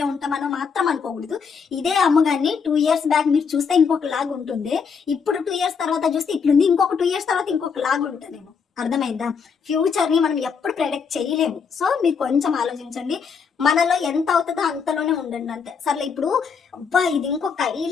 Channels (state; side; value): quieter; right; 6.0 dB